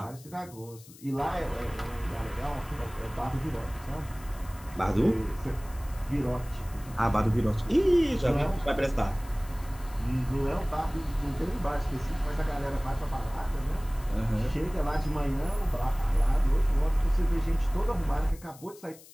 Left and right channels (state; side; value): noise; left; hiss, 21 dB below the sound